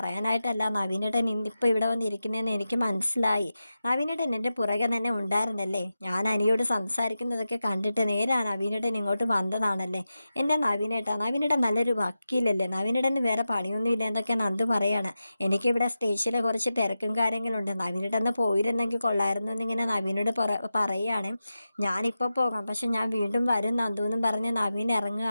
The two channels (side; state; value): both; inverted; correlation -0.92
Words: നവീനേട്ടൻ ഇന്നിപ്പോൾ ഇവിടെ വന്നിരിക്കുന്നതെന്ന് എനിക്ക് മനസ്സിലായി. നവീനേട്ടൻ എൻ്റെ പുറകെ തന്നെ ഉണ്ടായിരുന്നല്ലേ. ഞാൻ അനിയോട് സംസാരിക്കുന്നതൊക്കെ കണ്ടിട്ട് നേരെ നവീനേട്ടൻ ഇങ്ങോട്ട് വന്നതാണല്ലേ. എൻ്റെ നവീനേട്ടൻ നല്ലൊരു വക്കീലല്ലേ. നവീനേട്ടന് വേറെ പണിയൊന്നുമില്ല എന്നൊക്കെ നന്ദു പറയാണ്. എനിക്കിവിടെ സ്റ്റേഷനിൽ കുറച്ച് തിരക്കും കാര്യങ്ങളുണ്ട്. നവീനേട്ടൻ പോയിരുന്നെങ്കിൽ കൊള്ളായിരുന്നു എന്നിങ്ങനെ നവീനോട് പറയുകയാണ്. ഞാനിപ്പോൾ പോകാം, പക്ഷെ ഞാൻ വീണ്ടും വരും നന്ദു എന്നും പറഞ്ഞ് നവീൻ